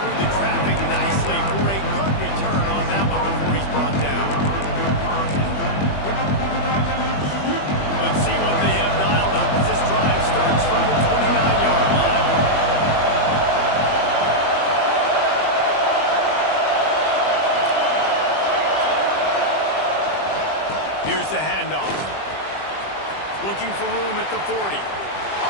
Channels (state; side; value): late; right; 20 ms